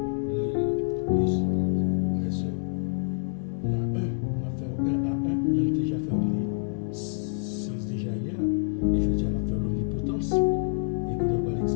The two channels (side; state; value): right; silent; digital silence